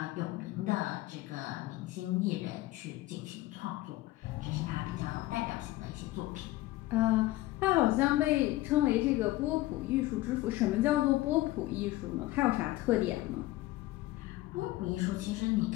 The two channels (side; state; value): right; quieter; 17.5 dB